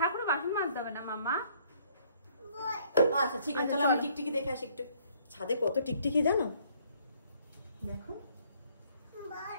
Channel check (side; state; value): both; inverted; correlation -0.63